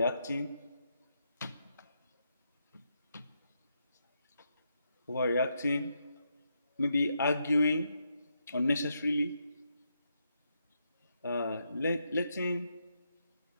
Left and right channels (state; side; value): inverted; both; correlation -0.81